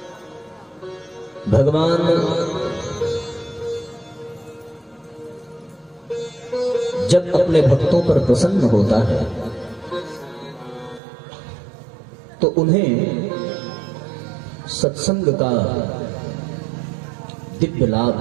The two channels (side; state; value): left; drops out; at 11.0 s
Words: भगवान जब अपने भक्तों पर प्रसन्न होता है तो उन्हें सत्संग का दिव्य लाभ